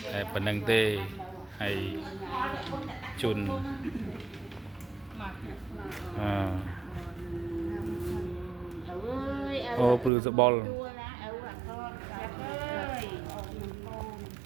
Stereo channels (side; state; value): left; drops out; at 10.1 s